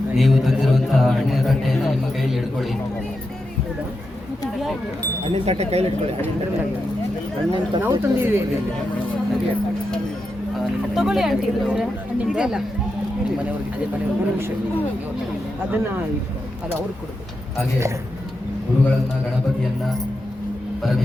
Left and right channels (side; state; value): both; normal; correlation 0.88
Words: ನೀವು ತಂದಿರುವಂತಹ ಹಣ್ಣಿನ ತಟ್ಟೆಯನ್ನು ನಿಮ್ಮ ಕೈಯಲ್ಲಿ ಹಿಡ್ಕೊಳ್ಳಿ. ಹಣ್ಣಿನ ತಟ್ಟೆ ಕೈಲಿ ಇಟ್ಕೊಳ್ಳಿ. ನಾವು ತಂದಿದ್ದೀವಿ. ತಗೊಳ್ಳಿ ಆಂಟಿ. ಅದನ್ನ ಅದು ಅವ್ರಿಗೆ ಕೊಡಬೇಕು. ಹಾಗೆ ಗುರುಗಳನ್ನ, ಗಣಪತಿಯನ್ನ,